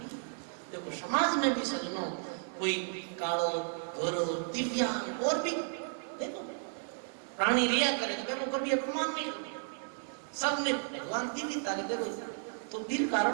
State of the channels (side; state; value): left; silent; 55 dB below the other